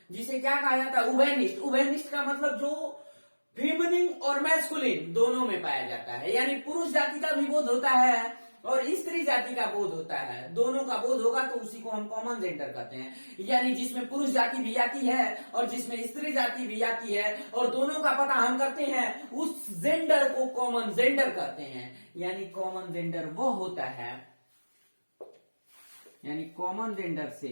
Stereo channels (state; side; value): inverted; both; correlation -1.00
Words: जिसे क्या कहा जाता है? उभयनिष्ठ। उभयनिष्ठ का मतलब जो फेमिनिन और मैस्कुलिन दोनों में पाया जाता है, यानी पुरुष जाति का भी बोध होता है और स्त्री जाति का बोध होता है, दोनों का बोध होगा तो उसी को हम कॉमन जेंडर कहते हैं। यानी जिसमें पुरुष जाति भी आती है और जिसमें स्त्री जाति भी आती है और दोनों का पता हम करते हैं, उस जेंडर को कॉमन जेंडर कहते हैं। यानी कॉमन जेंडर वो होता है, यानी कॉमन जेंडर से